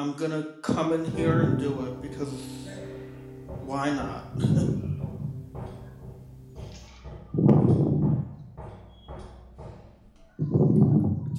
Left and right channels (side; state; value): both; identical; correlation 1.00